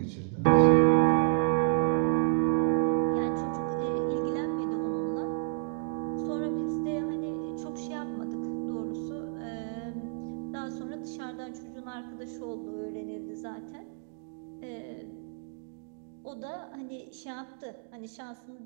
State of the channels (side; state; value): left; silent; digital silence